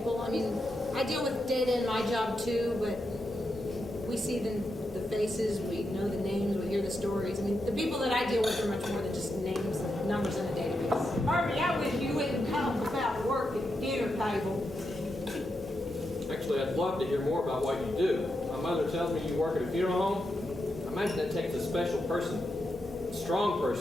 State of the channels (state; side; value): normal; both; correlation 0.85